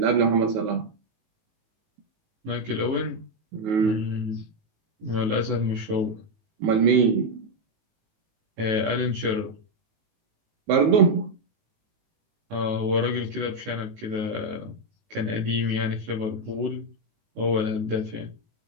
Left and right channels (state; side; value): late; left; 18 ms